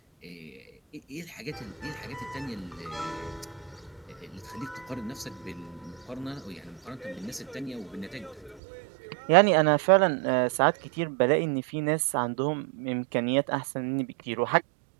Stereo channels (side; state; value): left; drops out; at 8.6 s